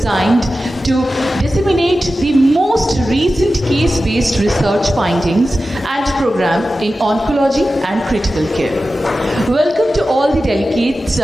to disseminate the most recent case-based research findings and program in oncology and critical care. Welcome to all the delegates,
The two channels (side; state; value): both; normal; correlation 0.94